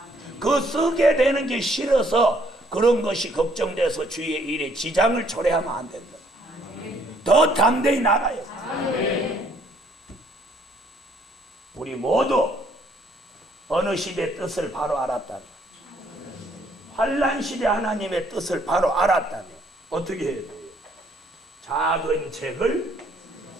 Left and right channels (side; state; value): both; normal; correlation 0.65